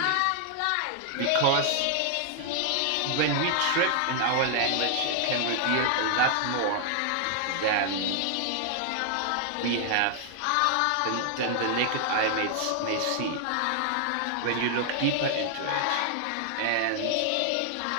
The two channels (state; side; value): different; both; correlation 0.00